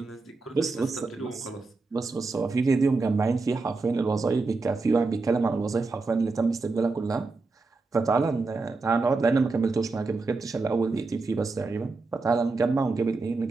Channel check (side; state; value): left; quieter; 3.8 dB